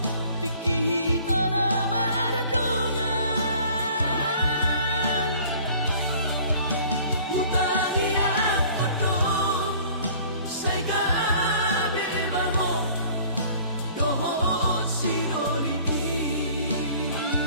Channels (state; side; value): inverted; both; correlation -0.51